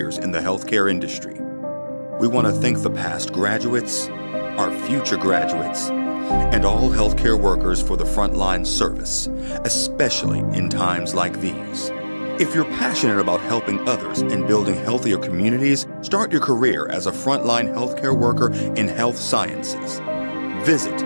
in the healthcare industry. We want to thank the past graduates, our future graduates, and all healthcare workers for the frontline service, especially in times like these. If you're passionate about helping others and building healthier communities, start your career as a frontline healthcare worker in health sciences. Visit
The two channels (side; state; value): both; inverted; correlation -1.00